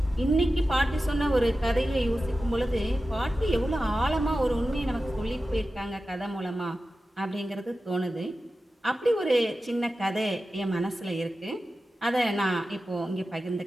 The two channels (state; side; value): normal; both; correlation 0.94